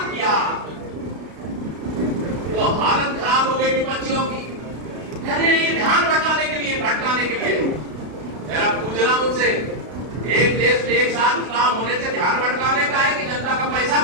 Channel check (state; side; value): late; left; 33 ms